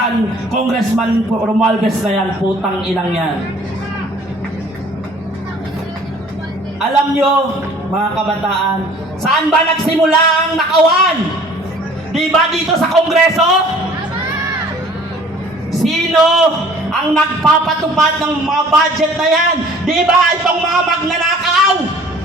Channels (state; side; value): normal; both; correlation 0.52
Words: Romualdez na yan, putang inang yan. Alam nyo, mga kabataan, saan ba nagsimula ang nakawan? Di ba dito sa Kongreso? Sino ang nagpapatupad ng mga budget na yan? Di ba itong mga magnanakaw?